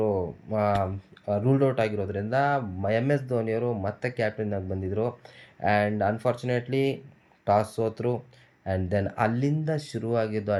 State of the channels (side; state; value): both; identical; correlation 1.00